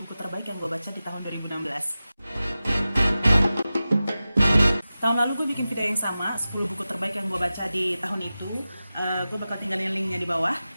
buku terbaik yang gue baca di tahun 2016. Tahun lalu gue bikin video yang sama, 10 buku terbaik yang gue baca di tahun itu. Gue bakal tinggalin linknya di bawah.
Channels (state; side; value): inverted; both; correlation -0.95